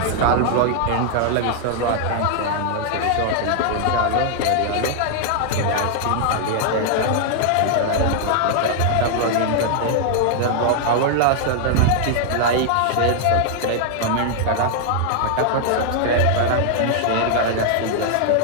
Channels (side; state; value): both; different; correlation 0.00